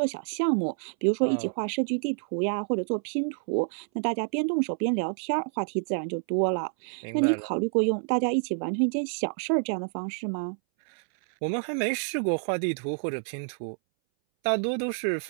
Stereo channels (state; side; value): silent; left; 59 dB below the other